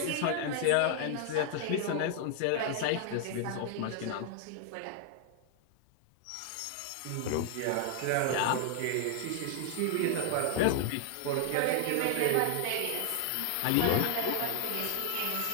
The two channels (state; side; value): different; both; correlation 0.00